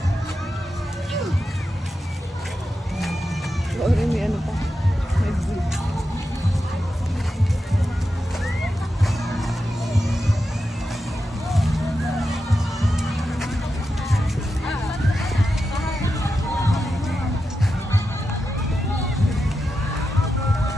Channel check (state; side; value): normal; both; correlation 0.89